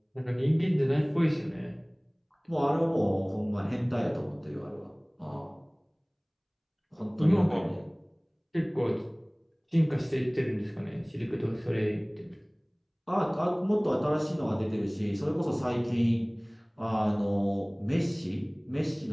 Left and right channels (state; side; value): identical; both; correlation 1.00